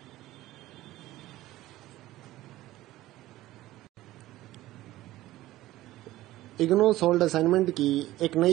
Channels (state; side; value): quieter; left; 16.1 dB